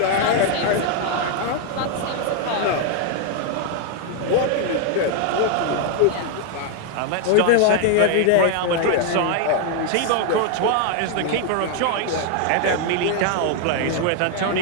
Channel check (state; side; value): different; both; correlation 0.00